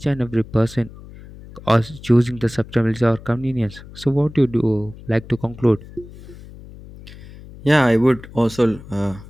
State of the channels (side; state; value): left; noise; hum, 18 dB below the sound